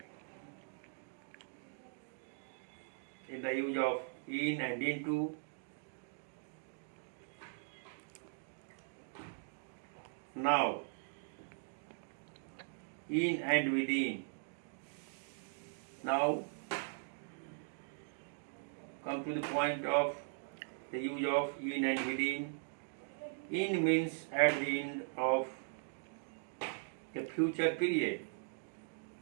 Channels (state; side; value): silent; left; digital silence